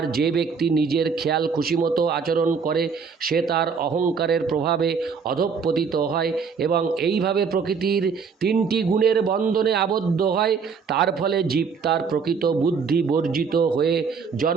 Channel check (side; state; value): left; quieter; 5.7 dB